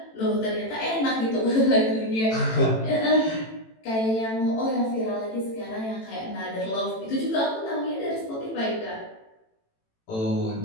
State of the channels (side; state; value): right; late; 18 ms